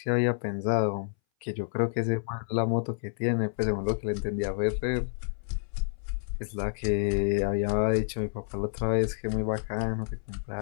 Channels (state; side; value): silent; right; 58 dB below the other